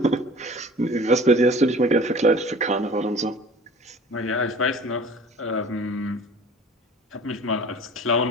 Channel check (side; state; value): both; normal; correlation 0.45